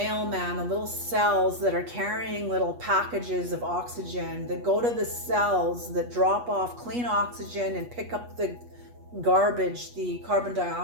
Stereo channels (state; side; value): late; left; 8.3 ms